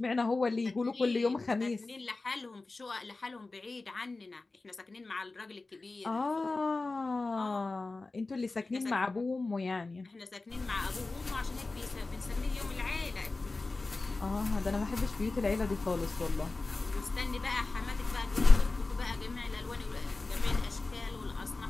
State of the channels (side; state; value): right; quieter; 3.5 dB